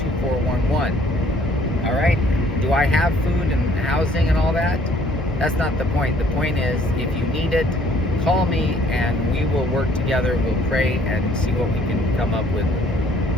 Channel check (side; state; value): both; normal; correlation 0.60